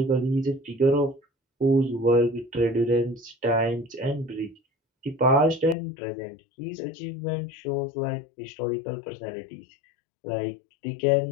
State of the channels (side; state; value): right; drops out; at 5.8 s